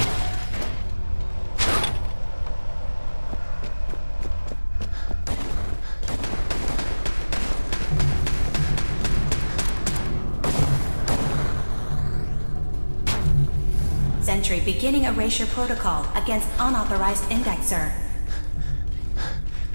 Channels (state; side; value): inverted; both; correlation -1.00